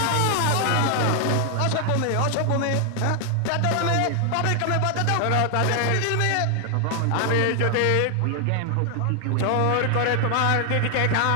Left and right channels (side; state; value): both; different; correlation 0.00